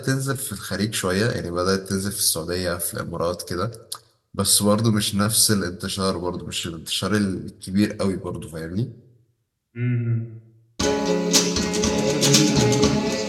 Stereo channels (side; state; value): both; identical; correlation 1.00